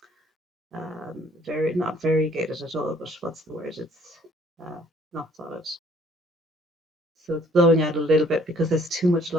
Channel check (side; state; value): both; normal; correlation 0.60